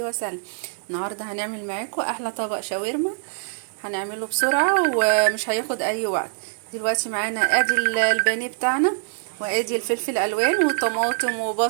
وسلم. النهارده هنعمل معاكم احلى طبق شاورما. هنعمله بسرعة ومش هياخد اي وقت. دلوقتي معانا ادي البانيه بتاعنا، وادي الفلفل الالوان وطماطم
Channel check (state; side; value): silent; left; digital silence